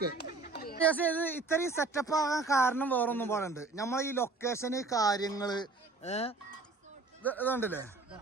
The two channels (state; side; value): quieter; left; 3.6 dB